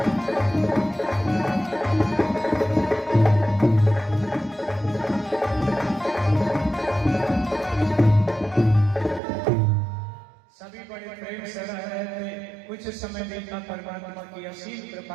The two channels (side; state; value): left; drops out; at 9.2 s